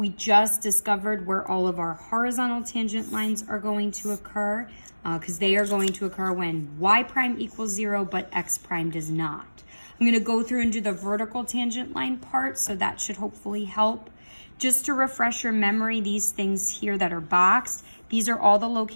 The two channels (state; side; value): inverted; both; correlation -1.00